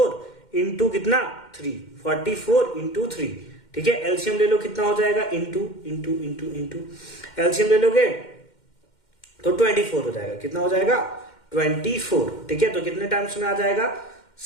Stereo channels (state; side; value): late; right; 2.1 ms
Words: इंटू कितना 3, 44 इंटू 3, ठीक है, एलसीएम ले लो, कितना हो जाएगा इंटू एलसीएम ले लोगे तो 24 हो जाएगा, कितना हो जाएगा 24, ठीक है, तो कितने टाइम्स में आ जाएगा